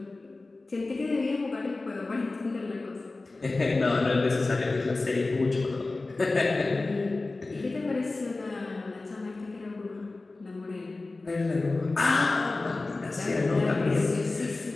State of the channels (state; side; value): quieter; right; 3.3 dB